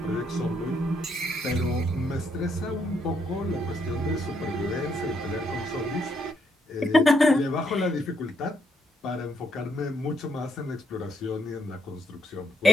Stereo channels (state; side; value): normal; both; correlation 0.75